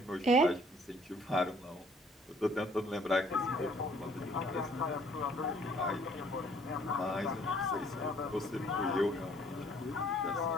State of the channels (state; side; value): normal; both; correlation 0.59